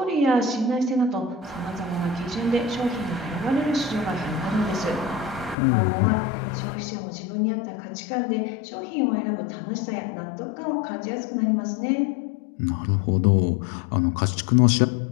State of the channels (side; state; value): right; drops out; at 5.6 s